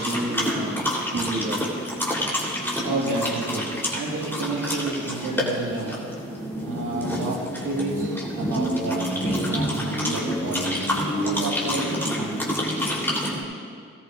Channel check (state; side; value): normal; both; correlation 0.41